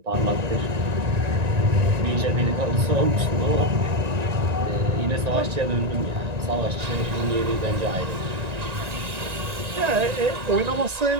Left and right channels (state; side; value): late; left; 1.9 ms